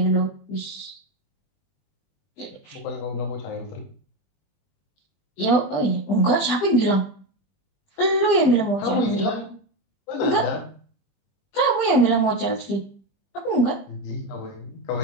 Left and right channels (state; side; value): late; right; 20 ms